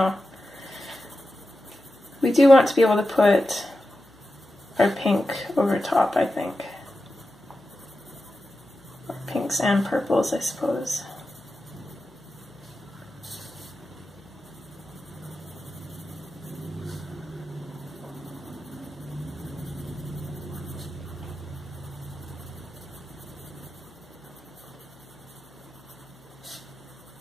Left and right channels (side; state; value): left; noise; hum, 29 dB below the sound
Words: We do want to be able to put or pink over top, I think. Or pinks and purples, I suppose.